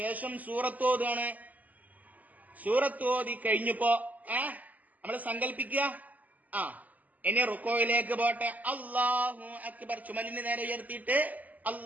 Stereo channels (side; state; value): left; late; 0.079 ms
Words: സൂറത്ത് ഓതാണ്. സൂറത്ത് ഓതി കഴിഞ്ഞപ്പോ നമ്മള് സങ്കല്പിക്കുക. ഇനി റുക്കോയിലേക്ക് പോട്ടെ. അല്ലാഹു അക്ബർ. ചുമലിന് നേരെ ഉയർത്തിയിട്ട്